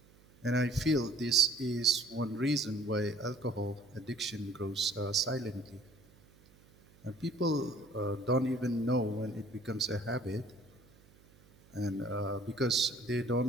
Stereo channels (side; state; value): right; noise; hum, 27 dB below the sound